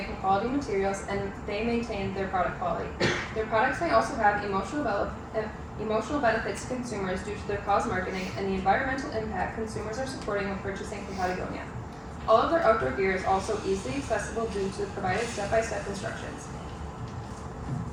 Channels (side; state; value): both; identical; correlation 1.00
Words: from quality materials and they maintain their product quality. Their products may also have emotional benefits to consumers due to their cause marketing and the environmental impact consumers are supporting when purchasing from Patagonia. All of their outdoor gear is also easily accessible due to the provided step-by-step instructions.